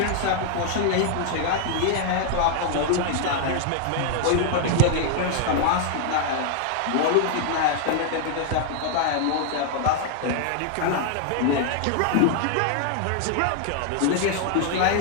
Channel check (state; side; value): different; both; correlation 0.00